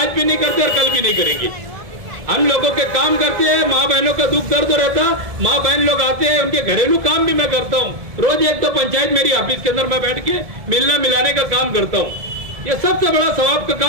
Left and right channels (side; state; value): left; late; 1.7 ms